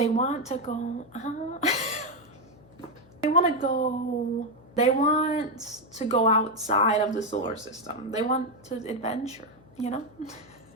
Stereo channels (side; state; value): left; noise; hum, 25 dB below the sound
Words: want to go, they want to go outside of the solar system. They want to adventure, you know?